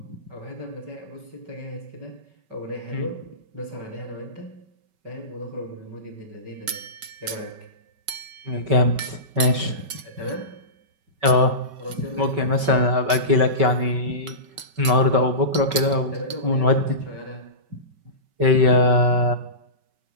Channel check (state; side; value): late; left; 5.2 ms